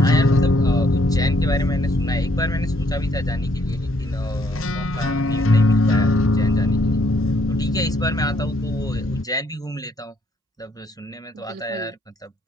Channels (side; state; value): both; normal; correlation 0.69